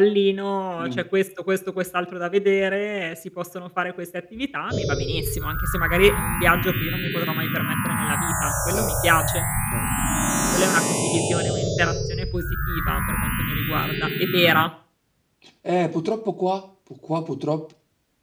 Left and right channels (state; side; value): identical; both; correlation 1.00